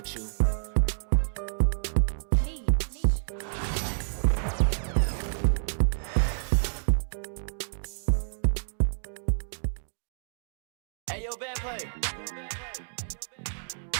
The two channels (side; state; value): left; silent; digital silence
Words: you. Hey, yo, bad play.